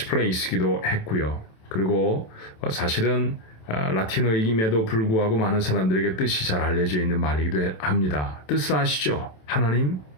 했고요. 그리고 사실은 라틴어임에도 불구하고 많은 사람들에게 뜻이 잘 알려져 있는 말이기도 합니다. 뜻을 아시죠? 하나님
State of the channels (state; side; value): late; right; 27 ms